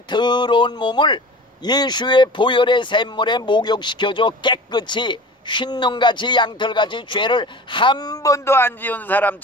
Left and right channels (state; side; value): normal; both; correlation 0.38